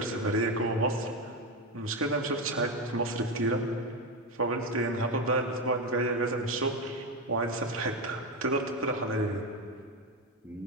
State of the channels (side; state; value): both; normal; correlation 0.12